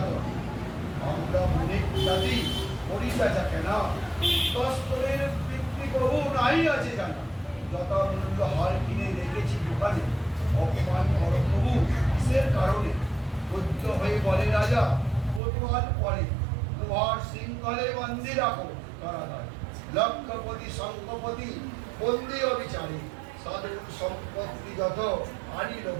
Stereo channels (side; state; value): left; drops out; at 15.4 s